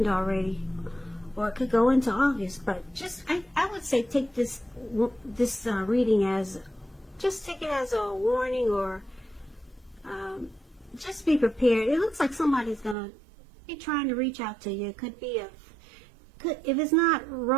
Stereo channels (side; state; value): left; drops out; at 13.0 s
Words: already, or it could go into August. But I would say take this reading as, just take it as a warning, or just be prepared. It looks like somebody's gonna be trying to reach out to you. It could be if it's not